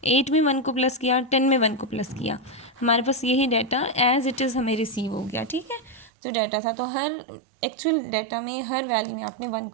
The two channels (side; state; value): left; drops out; at 6.1 s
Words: 8 में 1 को प्लस किया, 10 में 1 को प्लस किया। हमारे पास यही डाटा एज इट इज़ हमें रिसीव हो गया। ठीक है, जो डाटा था, तो हर एक्चुअल डाटा में हर वैल्यू में आपने 1